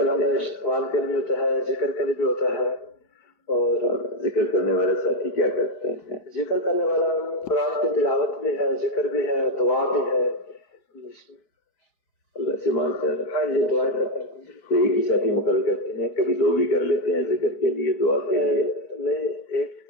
استقبال کے لیے بھی ہوتا ہے ذکر کے لیے بھی ہوتا ہے. اور ذکر کرنے والے ساتھی کیا کرتے ہیں؟ ذکر کرنے والا قرآن کی تلاوت بھی ہے ذکر بھی ہے دعا بھی ہے. اللہ سے مانگتا ہے. ہاں جی دعا کرتے ہیں. تو ایک ہی ساتھی مقرر کرتے ہیں کبھی 2 بھی کر لیتے ہیں ذکر کے لیے دعا کے لیے؟ نہیں ایک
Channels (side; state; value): right; late; 5.0 ms